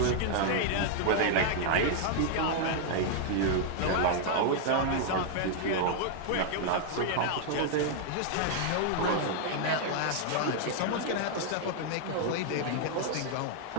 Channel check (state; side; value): different; both; correlation 0.00